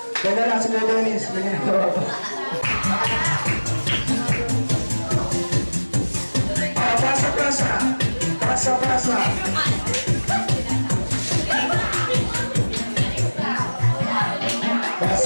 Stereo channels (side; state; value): both; inverted; correlation -1.00